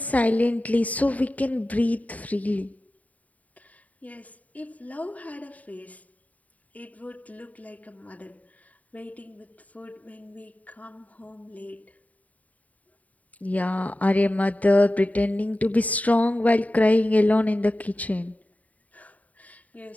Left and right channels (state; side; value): late; right; 0.071 ms